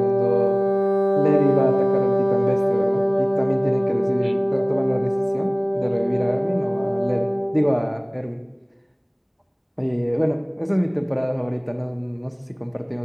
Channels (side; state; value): both; identical; correlation 1.00